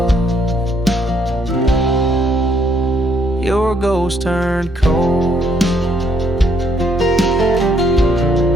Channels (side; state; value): both; normal; correlation 0.70